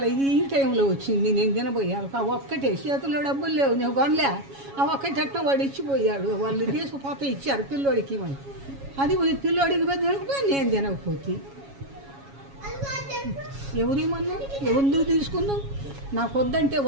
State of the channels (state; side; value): late; left; 7.2 ms